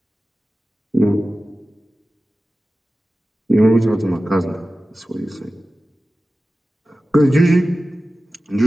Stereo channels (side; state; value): both; normal; correlation 0.95